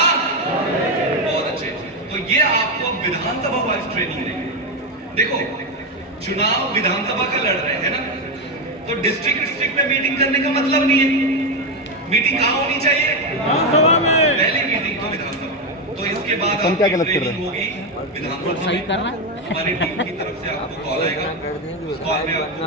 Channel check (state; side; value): normal; both; correlation 0.09